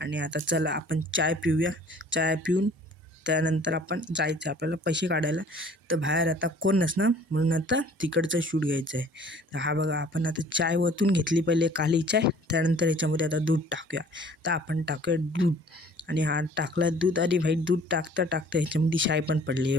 आता चला आपण चाय पिऊया. चाय पिऊन त्यानंतर आपण जायचं आपल्याला पैसे काढायला. तर बाहेर आता कोण नसणार, म्हणून आता तिकडचं शूट घ्यायचं आहे. तर हा बघा, आपण आता चाय ओतून घेतली पहिले, काली चाय. त्यानंतर याच्यामध्ये आता दूध टाकूया. तर आपण टाकूया दूध. आणि हा टाकला दूध. आणि भाई, दूध टाकता टाकता ह्याच्यामध्ये शाय पण पडली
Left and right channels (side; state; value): both; normal; correlation 0.52